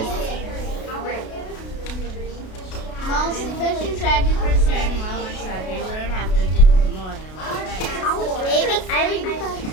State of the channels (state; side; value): late; right; 32 ms